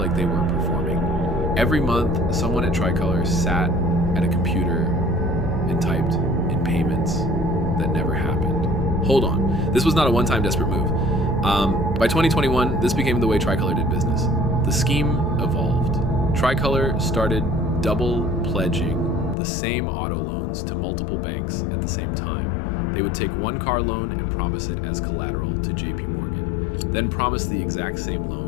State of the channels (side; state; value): right; drops out; at 19.4 s